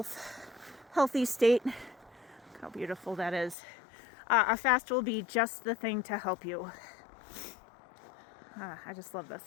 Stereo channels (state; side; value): drops out; right; at 3.6 s